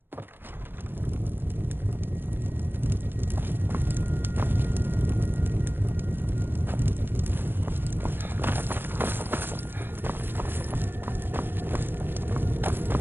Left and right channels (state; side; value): late; left; 0.10 ms